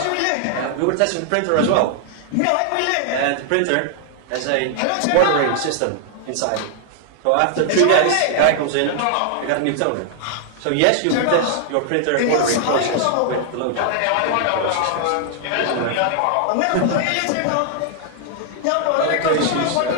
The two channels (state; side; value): different; both; correlation 0.00